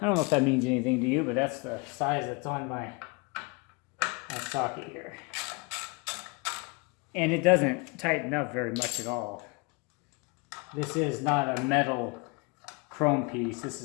don't know if that means anything to you, but that's the size that's on my socket here. And it doesn't tighten up very much at all. This is not a metal chrome piece. This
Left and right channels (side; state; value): right; quieter; 29.3 dB